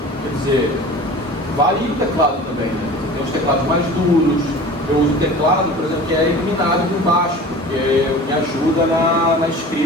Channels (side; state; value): both; normal; correlation 0.40